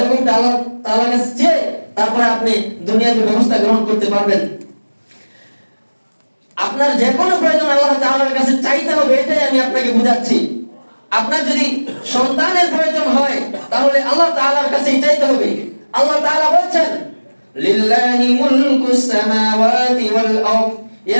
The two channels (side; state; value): both; inverted; correlation -1.00